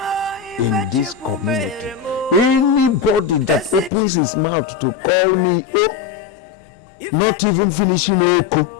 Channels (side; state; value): right; drops out; at 3.9 s